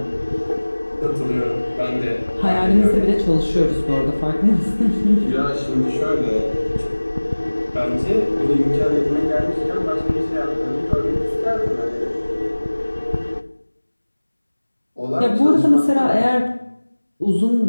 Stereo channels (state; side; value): inverted; both; correlation -1.00